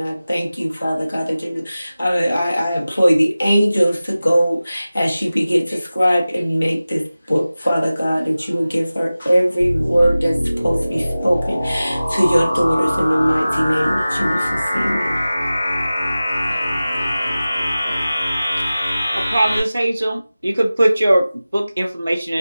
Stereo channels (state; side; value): inverted; both; correlation -0.97